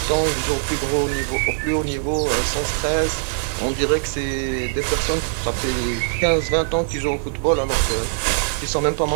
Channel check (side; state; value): left; silent; digital silence